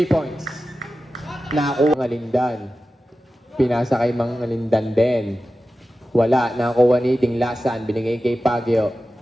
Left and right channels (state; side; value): normal; both; correlation 0.94